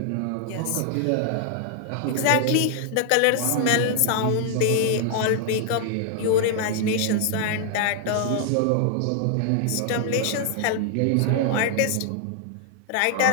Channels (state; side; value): different; both; correlation 0.00